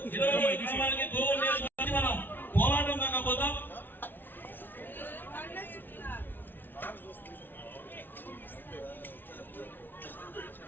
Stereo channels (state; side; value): late; right; 0.095 ms